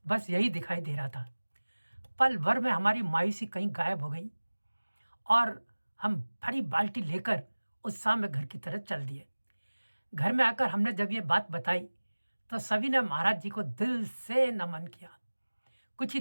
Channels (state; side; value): inverted; both; correlation -1.00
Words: बस यही दिखाई दे रहा था। पल भर में हमारी मायूसी कहीं गायब हो गई और हम भरी बाल्टी लेकर उत्साह में घर की तरफ चल दिए। घर में आकर हमने जब ये बात बताई तो सभी ने महाराज जी को दिल से नमन किया। कुछ ही